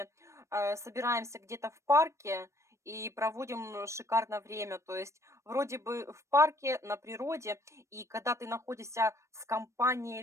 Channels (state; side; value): late; left; 0.14 ms